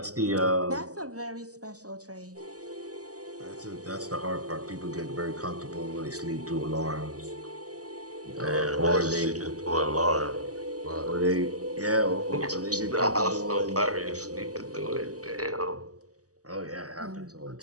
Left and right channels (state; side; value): late; left; 0.67 ms